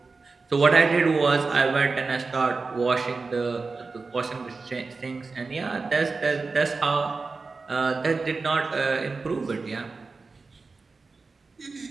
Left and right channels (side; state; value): left; quieter; 4.1 dB